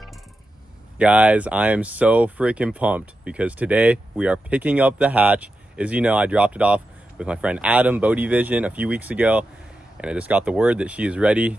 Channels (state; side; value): normal; both; correlation 0.89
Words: Guys, I am so freaking pumped because today we are picking up the hatch. As you know, I dropped it off with my friend Adam, Bodie Vision, a few weeks ago, and I just got the word that she is ready